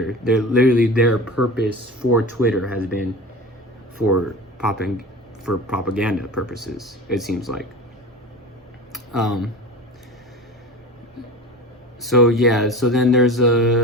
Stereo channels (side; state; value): both; normal; correlation 0.33